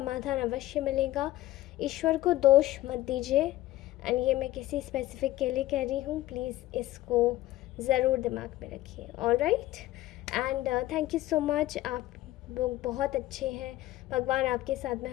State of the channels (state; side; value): quieter; right; 16.1 dB